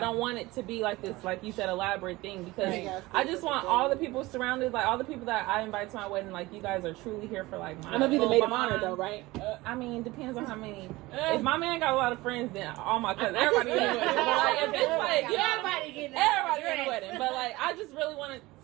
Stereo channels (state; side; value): quieter; left; 20.2 dB